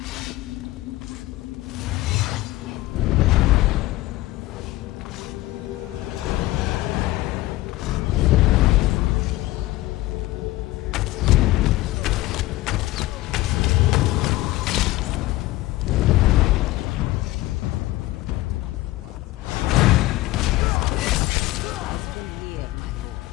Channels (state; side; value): quieter; right; 17.7 dB